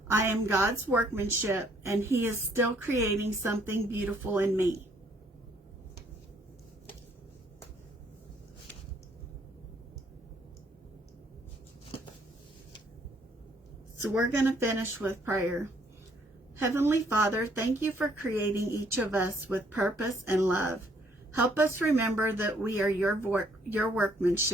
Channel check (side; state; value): both; normal; correlation 0.66